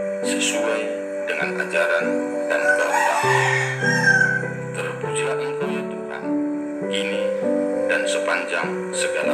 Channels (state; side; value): identical; both; correlation 1.00